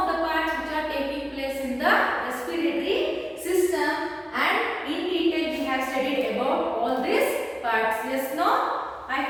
the parts which are taking place in the respiratory system, and in detail we have studied about all these parts. Yes, no? I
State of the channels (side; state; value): both; identical; correlation 1.00